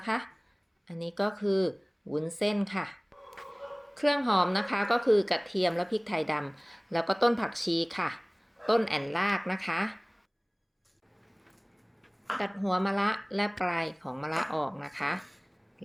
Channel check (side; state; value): both; identical; correlation 1.00